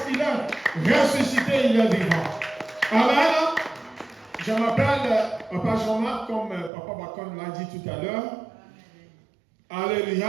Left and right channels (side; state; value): left; drops out; at 6.7 s